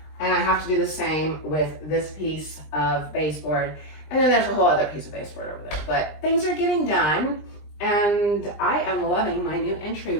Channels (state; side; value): late; right; 20 ms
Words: And I have to do the same with this piece of baseboard. And then there's a whole other piece of baseboard over there. But things are getting done. And I am loving my new